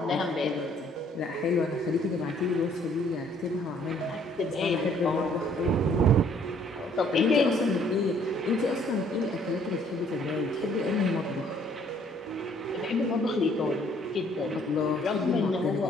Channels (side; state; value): both; normal; correlation 0.61